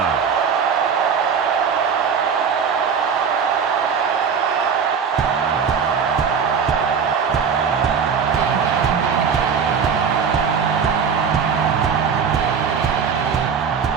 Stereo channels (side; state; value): left; quieter; 6.5 dB